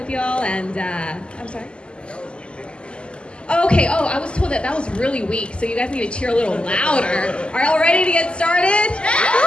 y'all and, I'm sorry? Okay, I was told that was really weak, so you guys need to cheer a little louder. Are y'all ready to get started?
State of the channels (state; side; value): late; right; 0.052 ms